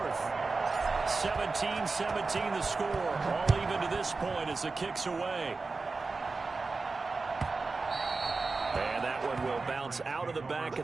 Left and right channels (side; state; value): left; quieter; 4.0 dB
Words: 17-17 the score. All even to this point as the kick's away. And that one will bounce out of the back of